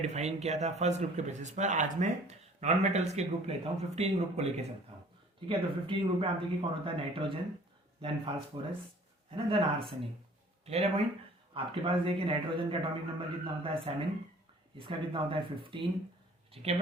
किया था फर्स्ट ग्रुप के बेसिस पर, आज मैं नॉन मेटल्स के ग्रुप लेता हूँ, 15 ग्रुप को लेके चलता हूँ। ठीक है? तो 15 ग्रुप में आप देखिए कौन होता है? नाइट्रोजन, देन फास्फोरस, है ना, देन आर्सेनिक। क्लियर है पॉइंट? आपके पास देखिए नाइट्रोजन का एटॉमिक नंबर कितना होता है? 7। इसका कितना होता है? 15। ठीक है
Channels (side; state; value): both; normal; correlation 0.51